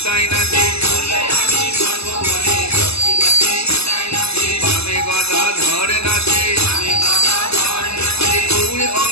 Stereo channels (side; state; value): right; late; 0.79 ms